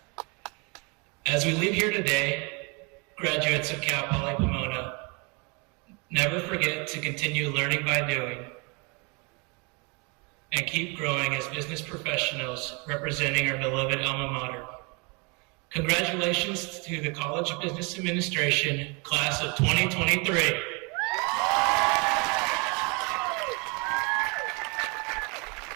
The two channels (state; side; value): quieter; left; 31.1 dB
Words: As we leave here today, graduates of Cal Poly Pomona, never forget to continue learning by doing and keep growing as business professionals representing our beloved alma mater. Congratulations to the College of Business Administration, class of 2023.